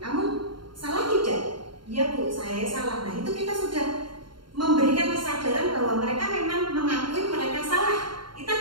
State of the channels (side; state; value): left; late; 0.72 ms